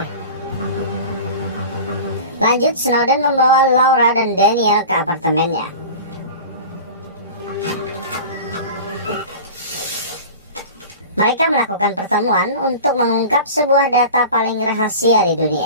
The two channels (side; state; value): both; inverted; correlation -0.35